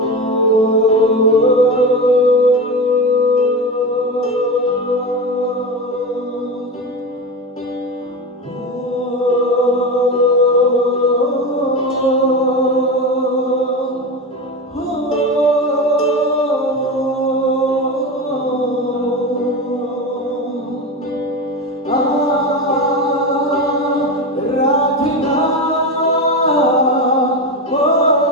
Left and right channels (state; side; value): normal; both; correlation 0.22